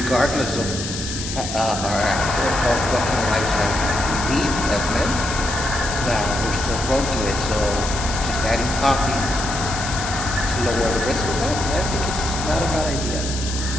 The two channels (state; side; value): noise; left; hiss, 7 dB below the sound